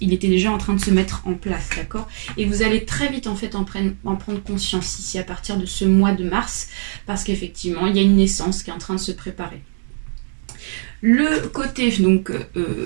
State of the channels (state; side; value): silent; left; digital silence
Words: déjà en train de se mettre en place, d'accord. Et vous allez très vite en fait en prendre conscience ici à partir de ce mois de mars, parce qu'effectivement il y a une naissance qui est en train de se préparer. Le côté donc